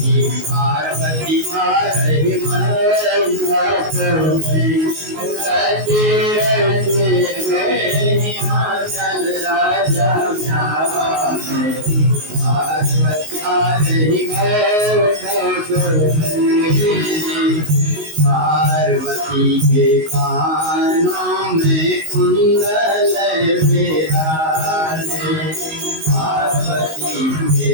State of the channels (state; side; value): late; left; 19 ms